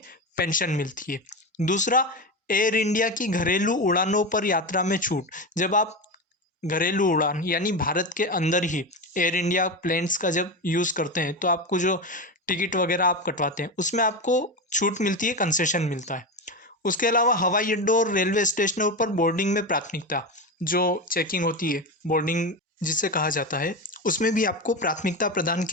पेंशन मिलती है। दूसरा, एयर इंडिया की घरेलू उड़ानों पर यात्रा में छूट। जब आप घरेलू उड़ान यानी भारत के अंदर ही एयर इंडिया प्लेन्स का जब यूज़ करते हैं तो आपको जो टिकट वगैरह आप कटवाते हैं उसमें आपको छूट मिलती है, कंसेशन मिलता है। उसके अलावा हवाई अड्डों और रेलवे स्टेशनों पर बोर्डिंग में प्राथमिकता, जो चेकिंग होती है, बोर्डिंग जिसे कहा जाता है, उसमें भी आपको प्राथमिकता प्रदान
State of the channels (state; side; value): normal; both; correlation 0.19